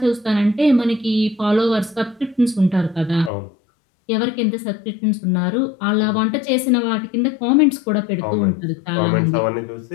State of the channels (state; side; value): drops out; right; at 3.3 s